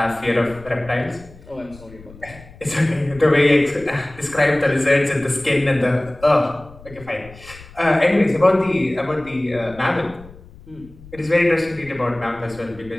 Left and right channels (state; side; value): noise; left; rumble, 20 dB below the sound